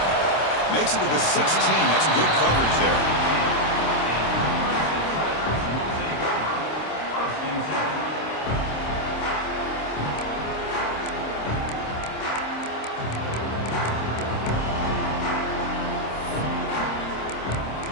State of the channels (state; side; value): late; right; 26 ms